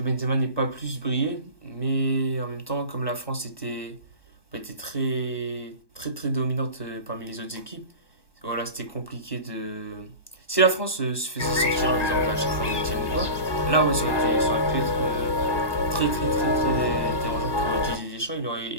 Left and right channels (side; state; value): right; late; 1.2 ms